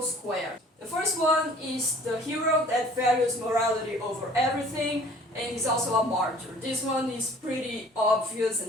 square. The first one is the hero that values morality over everything and is also a martyr. This one is pretty obvious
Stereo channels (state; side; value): normal; both; correlation 0.51